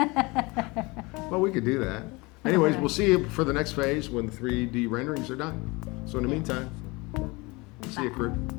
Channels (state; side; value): quieter; right; 24.9 dB